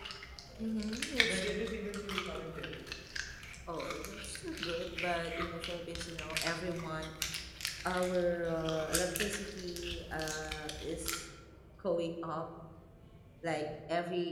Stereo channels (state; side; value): identical; both; correlation 1.00